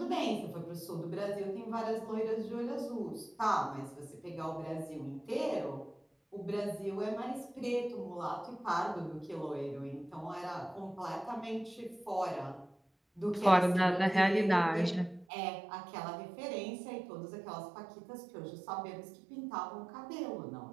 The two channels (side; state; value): left; drops out; at 15.2 s